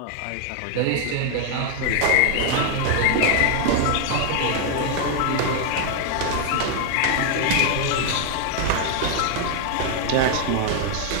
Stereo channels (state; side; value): different; both; correlation 0.00